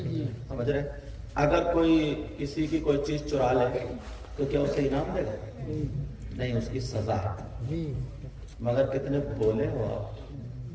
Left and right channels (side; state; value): both; identical; correlation 1.00